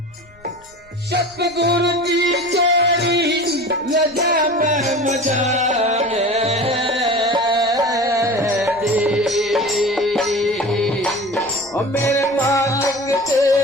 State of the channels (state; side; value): noise; left; rumble, 28 dB below the sound